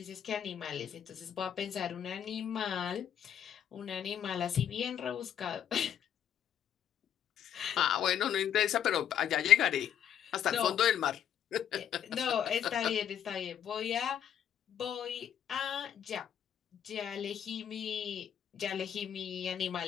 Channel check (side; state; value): right; quieter; 9.4 dB